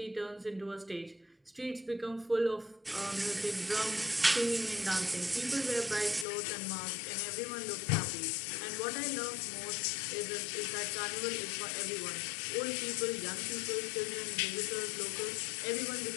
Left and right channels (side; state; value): right; drops out; at 6.2 s